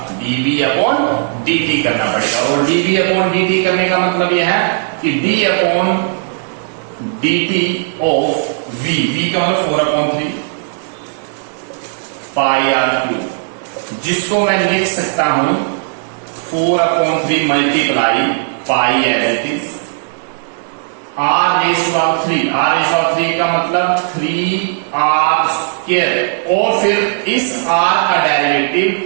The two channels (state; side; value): silent; left; digital silence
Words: dv अपॉन dt करना पड़ेगा। और dv अपॉन dt करने का मतलब यह है कि d upon dt of v का मतलब 4/3 पाई आर क्यूब, जिसको मैं लिख सकता हूं 4/3 multiply pi as it is r⁻³ का मतलब 3r²। और फिर इस r का डेरिवेटिव